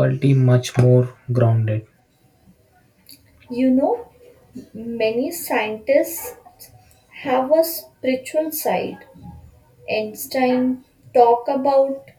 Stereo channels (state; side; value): identical; both; correlation 1.00